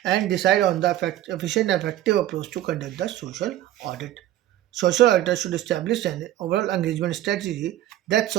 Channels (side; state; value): left; quieter; 13.5 dB